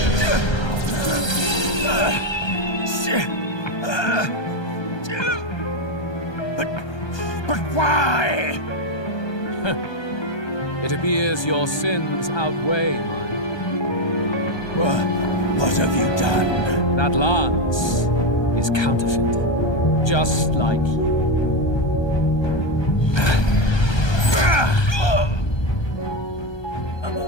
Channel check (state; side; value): late; right; 1.2 ms